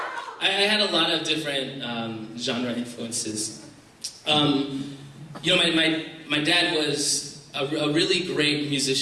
I had a lot of different genre influences. My dad was a really great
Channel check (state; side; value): identical; both; correlation 1.00